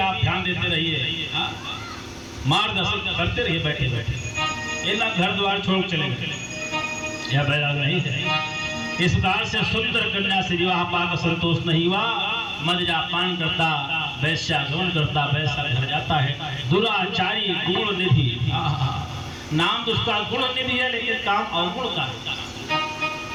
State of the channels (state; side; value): identical; both; correlation 1.00